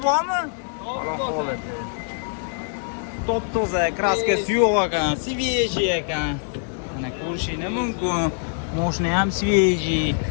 bormi? Holati. Top-toza, kraskasi yo'q ekan, свежий ekan. Mana ko'rishinglar mumkin. Mashina ham свежий.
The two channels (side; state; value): right; silent; digital silence